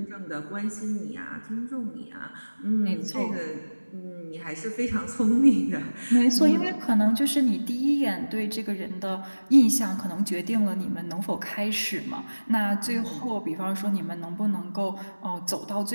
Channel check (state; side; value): inverted; both; correlation -1.00